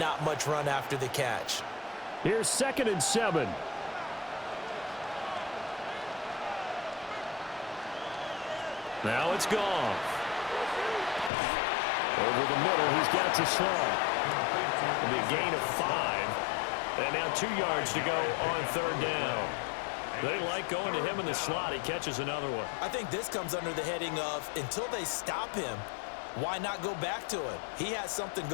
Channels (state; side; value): drops out; right; at 11.3 s